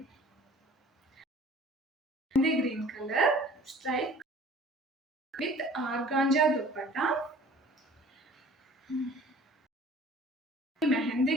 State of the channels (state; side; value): normal; both; correlation 0.49